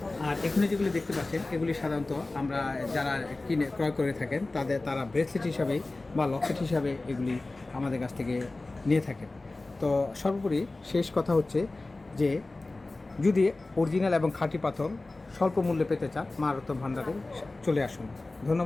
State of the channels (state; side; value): quieter; right; 3.1 dB